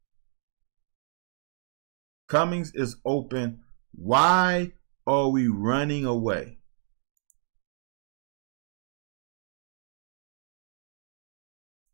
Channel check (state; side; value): silent; left; digital silence